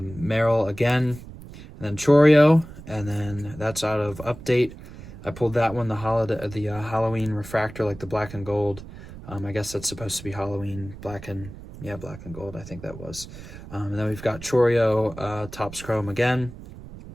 again, and then Chourio, and then that's out of Update. I pulled that one, the Halloween refractor, like the black and gold. I guess that's supposed to be Halloween, black and gold, I think that was. And then we've got Chourio, Topps Chrome again,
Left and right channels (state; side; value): noise; right; rumble, 15 dB below the sound